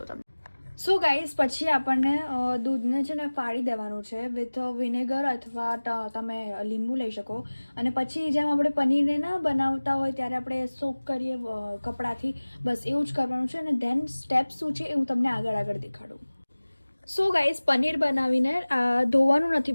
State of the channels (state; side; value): inverted; both; correlation -1.00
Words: તમને. સો ગાઈઝ, પછી આપણને દૂધને છે ને ફાડી દેવાનું છે વિથ વિનેગર અથવા તમે લીંબુ લઈ શકો, અને પછી જેમ આપણે પનીરને ના બનાવતા હોય ત્યારે આપણે સોક કરીએ કપડાથી, બસ એવું જ કરવાનું છે. અને ધેન સ્ટેપ શું છે એ હું તમને આગળ દેખાડું. સો ગાઈઝ, પનીર બનાવીને ધોવાનું નથી